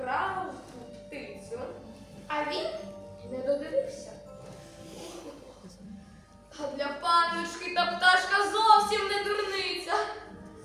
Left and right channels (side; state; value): both; identical; correlation 1.00